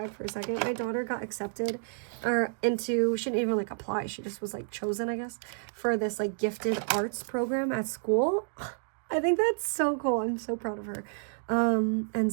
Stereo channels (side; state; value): left; silent; digital silence